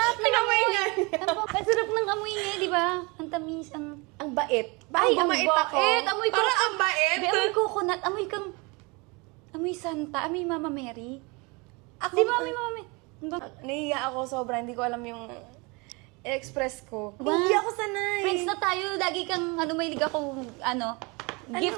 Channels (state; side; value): quieter; left; 27.9 dB